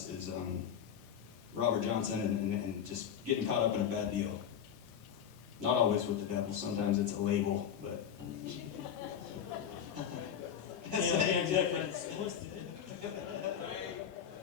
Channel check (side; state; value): right; quieter; 8.5 dB